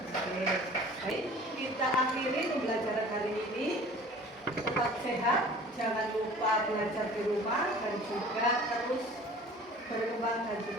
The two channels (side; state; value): both; normal; correlation 0.45